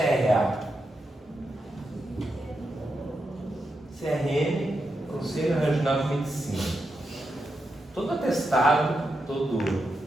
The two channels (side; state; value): both; normal; correlation 0.86